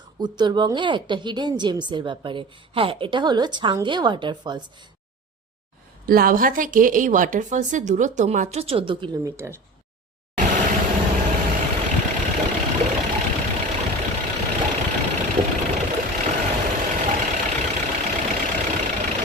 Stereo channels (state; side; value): normal; both; correlation 0.34